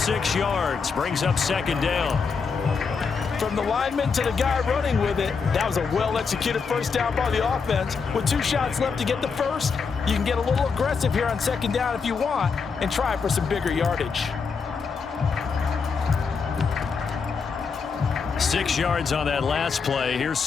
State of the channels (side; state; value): right; quieter; 5.4 dB